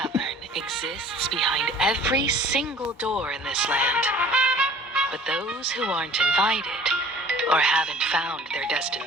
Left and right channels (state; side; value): normal; both; correlation 0.49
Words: exists behind every single door in this land. But those who aren't invited, or haven't found their